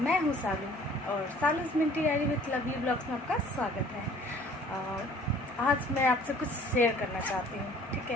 हूँ सालू और Salu's minty diary with lovely blogs में आपका स्वागत है। आज मैं आपसे कुछ शेयर करना चाहती हूँ। ठीक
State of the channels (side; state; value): both; normal; correlation 0.53